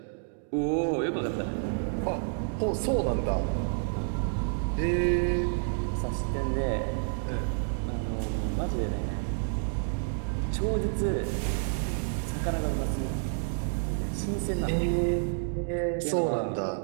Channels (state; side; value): silent; left; digital silence